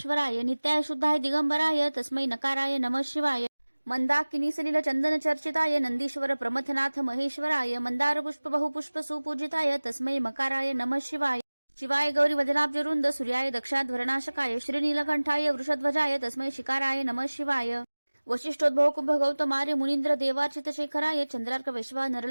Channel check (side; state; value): both; inverted; correlation -1.00